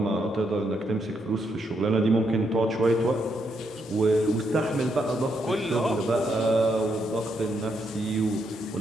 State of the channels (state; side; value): normal; both; correlation 0.78